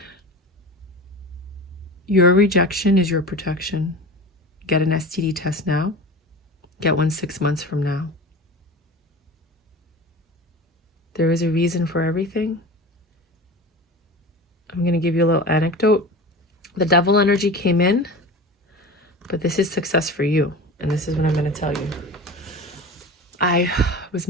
Your rejection is your protection. Get an STD test now. Get one 6 months from now. There is a reason for everything. I'm going to give you a little anecdote. The devil energy came in, but this is success for you. And this is what I'm going to tell you. I was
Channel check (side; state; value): both; normal; correlation 0.32